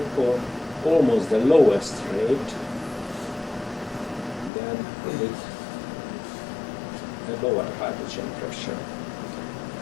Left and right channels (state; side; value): drops out; right; at 4.5 s